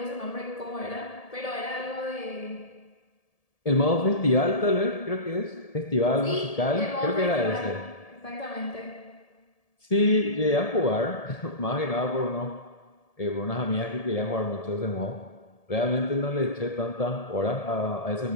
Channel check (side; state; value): right; late; 1.7 ms